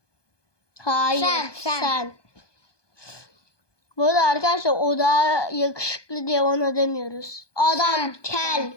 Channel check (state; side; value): late; right; 1.2 ms